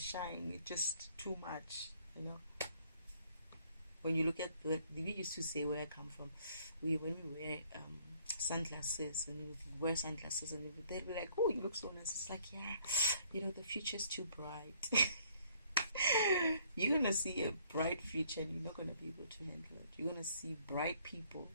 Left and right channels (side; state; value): both; inverted; correlation -0.62